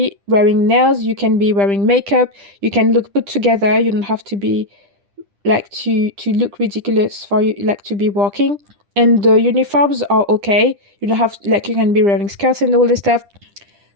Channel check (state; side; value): late; left; 10 ms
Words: wearing nails, you can be wearing makeup, you can look put together. You don't have to be like to look ridiculous for you, like, to be walking. And the uniforms are okay. You don't have, like, you can be wearing skirts and all this stuff.